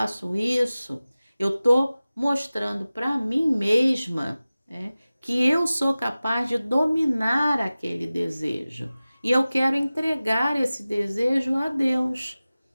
isso, eu estou mostrando para mim mesma, né, que eu sou capaz de dominar aquele desejo. E eu quero entregar esse desejo a Deus.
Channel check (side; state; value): both; inverted; correlation -0.97